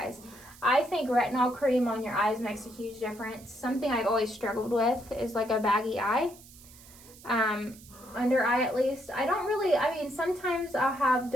I think retinol cream on your eyes makes a huge difference. Something I've always struggled with is like a baggy eye. Under eye at least. I mean, sometimes I'll have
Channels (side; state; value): right; noise; hiss, 21 dB below the sound